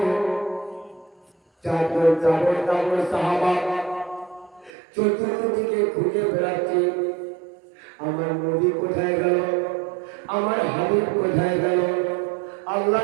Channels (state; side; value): drops out; left; at 4.7 s